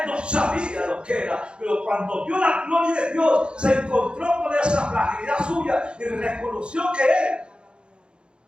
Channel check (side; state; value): left; late; 0.054 ms